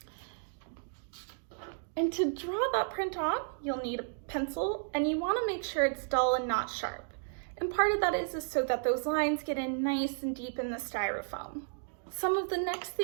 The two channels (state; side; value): silent; left; digital silence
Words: And to draw that print on, you'll need a pencil, and you want to make sure it's dull and not sharp. And part of that is so that those lines get in nice and deep in the styrofoam. Some of the next